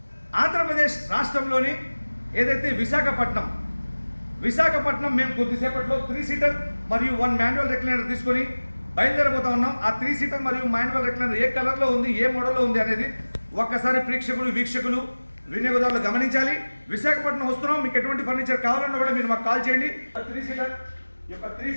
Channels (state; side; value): inverted; both; correlation -1.00